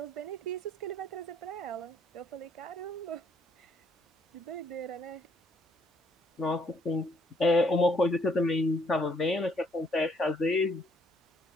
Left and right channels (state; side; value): normal; both; correlation 0.68